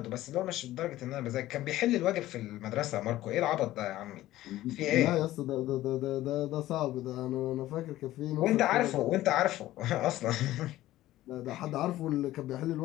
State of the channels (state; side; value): quieter; right; 15.3 dB